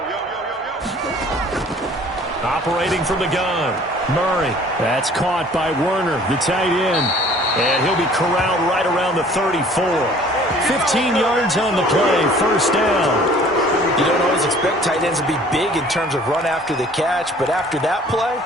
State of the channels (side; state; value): both; normal; correlation 0.52